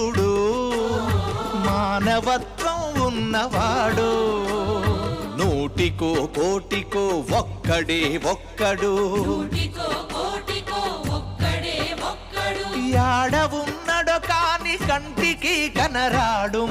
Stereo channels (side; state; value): both; identical; correlation 1.00